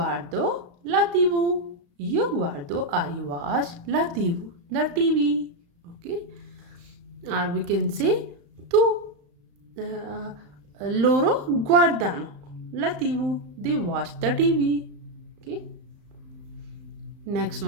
la TV. Io guardo, I watch la TV, the TV. Okay? Or we can say tu loro guardano la TV. They watch the TV. Okay. Next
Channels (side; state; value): left; late; 35 ms